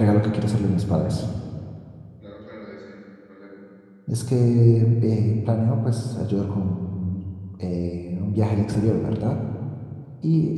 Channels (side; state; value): both; identical; correlation 1.00